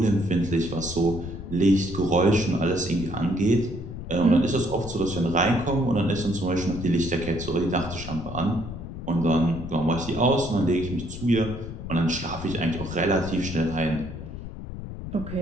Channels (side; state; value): left; noise; rumble, 9 dB below the sound